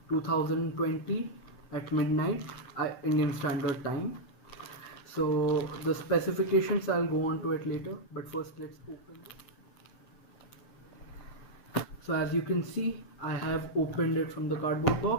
2020 at midnight Indian Standard Time. So the specifications I'll go on to it later, but first let's open it. So as you can see, I have opened it from the cardboard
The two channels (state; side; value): late; right; 7.6 ms